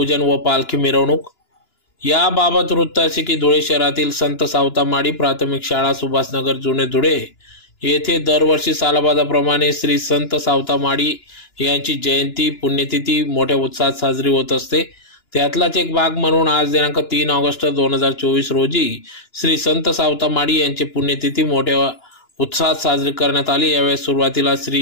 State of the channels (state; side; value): late; right; 2.9 ms